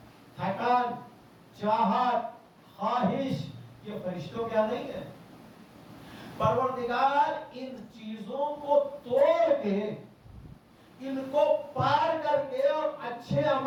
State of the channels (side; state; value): both; identical; correlation 1.00